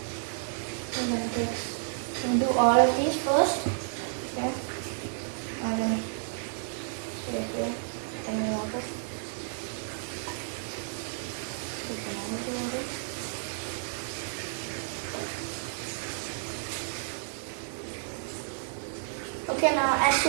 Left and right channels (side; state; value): left; silent; digital silence